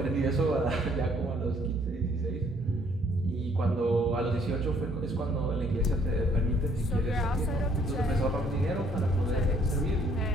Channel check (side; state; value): both; normal; correlation 0.64